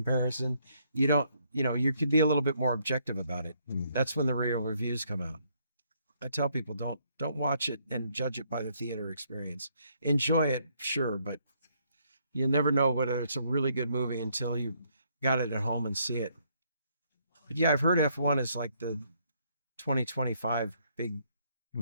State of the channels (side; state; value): both; inverted; correlation -0.70